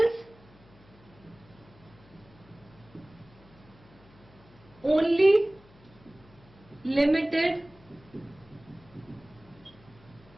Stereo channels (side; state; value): left; noise; hum, 25 dB below the sound